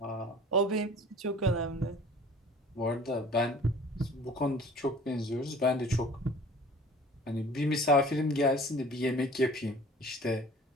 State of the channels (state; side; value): normal; both; correlation 0.47